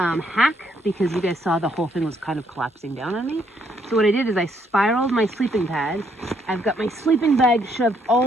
because you guys saw the whole thing was kind of collapsing down on me. So what I did is I spiraled my sleeping pad. I've got my sleeping bag shoved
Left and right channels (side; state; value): both; normal; correlation 0.71